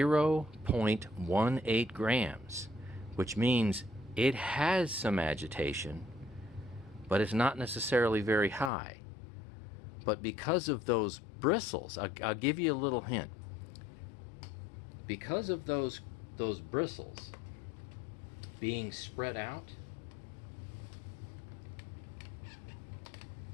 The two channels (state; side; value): drops out; right; at 8.7 s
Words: grams, which means it has some agitation, but it's not necessarily very high. But because of those bristles, I'll give you a little hint. Because of those bristles being spread out,